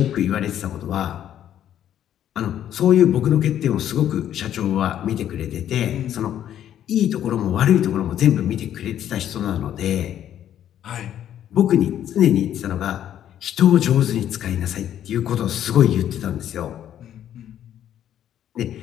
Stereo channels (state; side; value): quieter; right; 10.8 dB